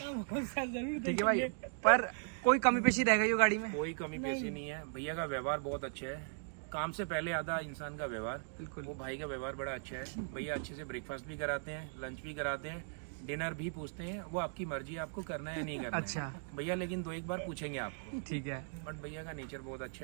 होगा जरूर देखेंगे। ठीक है भाई, पर कोई कमी पेशी रहेगा ये गाड़ी में? कोई कमी पेशी नहीं है, भैया का व्यवहार बहुत अच्छा है। काम से पहले आता इंसान का व्यवहार। बिल्कुल। वो भाई का व्यवहार बड़ा अच्छा है। भैया अच्छे से ब्रेकफास्ट भी कराते हैं, लंच भी कराते हैं, डिनर भी पूछते हैं, वो आपकी मर्जी है आपको करना है या नहीं करना। अच्छा भैया, लेकिन 2-1 बार पूछेंगे आपको। ठीक है। बट भैया का नेचर बहुत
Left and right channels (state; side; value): silent; left; digital silence